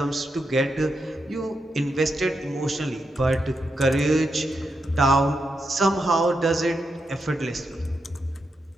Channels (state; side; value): normal; both; correlation 0.85